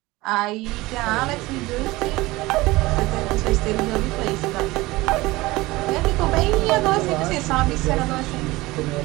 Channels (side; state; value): left; quieter; 20.2 dB